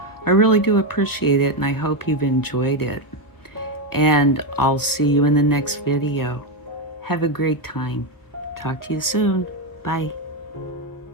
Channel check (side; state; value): right; late; 1.0 ms